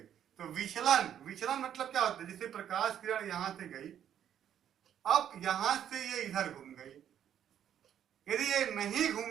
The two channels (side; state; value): left; quieter; 9.8 dB